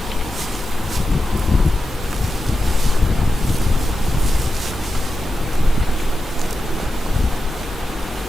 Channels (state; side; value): normal; both; correlation 0.90